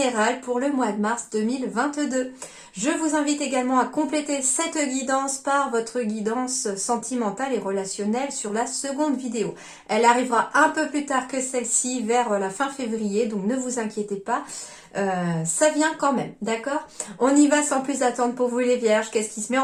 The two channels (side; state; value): both; identical; correlation 1.00